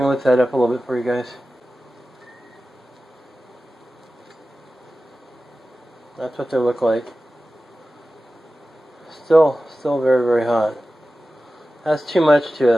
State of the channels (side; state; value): both; normal; correlation 0.95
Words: lift that up a little bit for you guys. That's what they look like. Still very, very hot. That's too much